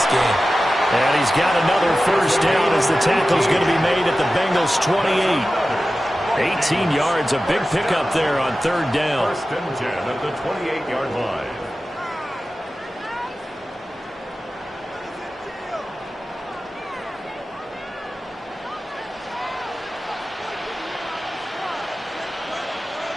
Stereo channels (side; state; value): both; normal; correlation 0.94